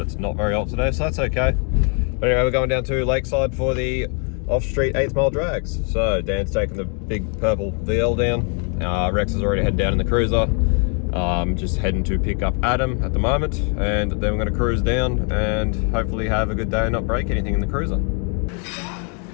it's not very hot today, so that's okay. But anyway, we're going down to Lakeside for the off-street 8th mile drags. So Dan's taking the big purple VL down. Rex has already headed down in the cruiser. Just heading to pick up Adam at the moment, and then we're going to cruise down and hopefully have a good day and not break anything in the cruiser.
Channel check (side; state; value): right; quieter; 39.8 dB